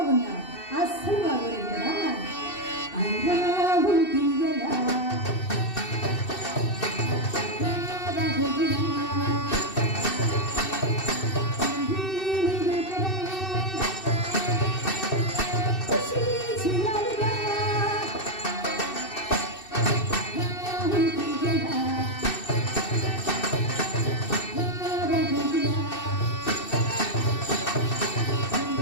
అస్సలు బాగోలేదు కదా.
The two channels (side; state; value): right; late; 2.6 ms